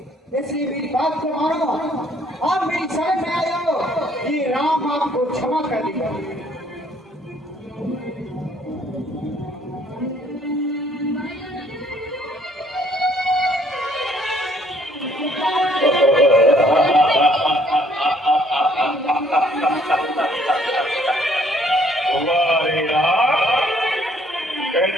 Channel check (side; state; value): both; normal; correlation 0.63